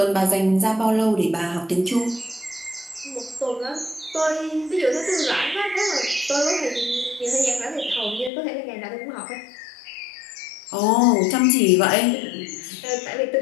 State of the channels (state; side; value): drops out; right; at 8.3 s